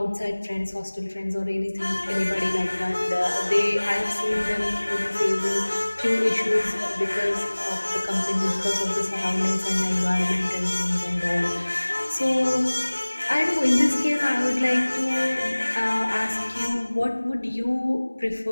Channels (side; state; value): both; inverted; correlation -1.00